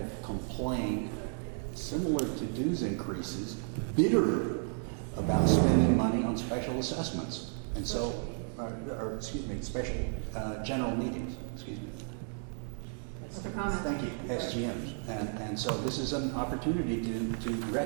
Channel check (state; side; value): silent; left; 56 dB below the other